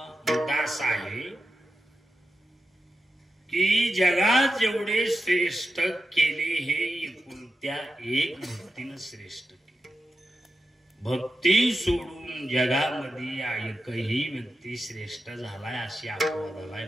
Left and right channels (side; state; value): both; normal; correlation 0.90